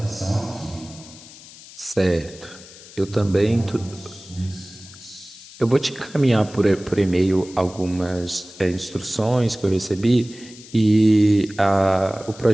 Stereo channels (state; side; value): noise; left; hiss, 19 dB below the sound